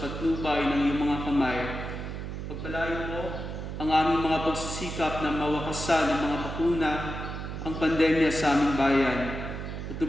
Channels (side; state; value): right; noise; hum, 6 dB below the sound